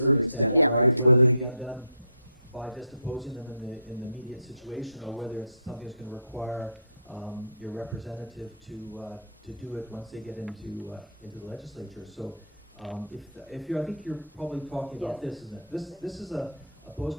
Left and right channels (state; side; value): inverted; both; correlation -0.58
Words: extent, Yeah. right? Whether they be undone by just opposing them in the immediate situation, or whether it's something that's going to require your representative to do it once they get into the legislature. So, I think you're probably talking about this, isn't it? This is a